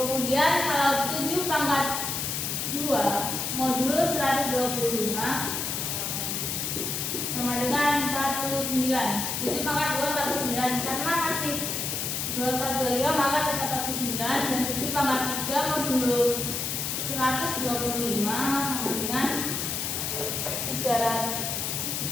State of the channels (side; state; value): left; noise; hiss, 2 dB below the sound